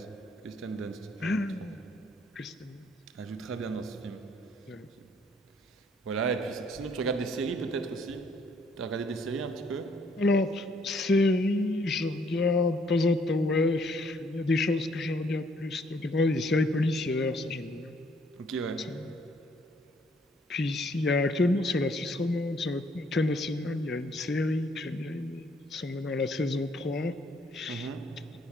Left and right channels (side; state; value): both; normal; correlation 0.65